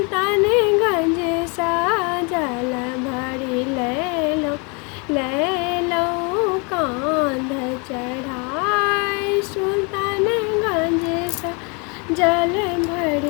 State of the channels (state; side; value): quieter; right; 32.4 dB